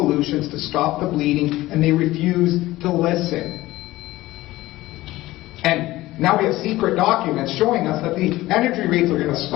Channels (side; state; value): right; quieter; 17.5 dB